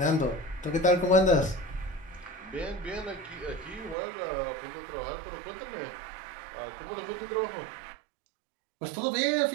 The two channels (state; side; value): drops out; left; at 4.0 s